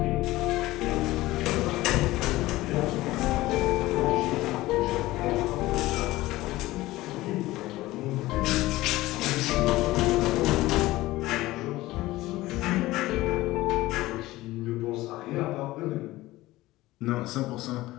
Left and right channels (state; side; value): quieter; right; 17.9 dB